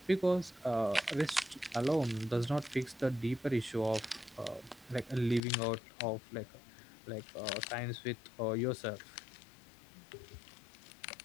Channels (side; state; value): right; drops out; at 5.4 s